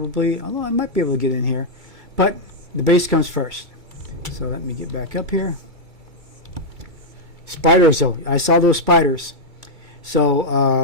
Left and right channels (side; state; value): left; late; 2.2 ms